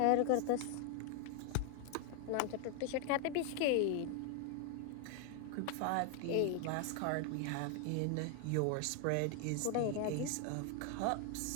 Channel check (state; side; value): different; both; correlation 0.00